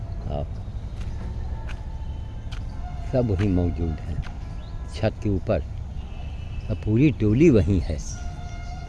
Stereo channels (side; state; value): both; identical; correlation 1.00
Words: खाओ, सब वहीं मौजूद हैं छत के ऊपर। अब पूरी टोली वहीं है,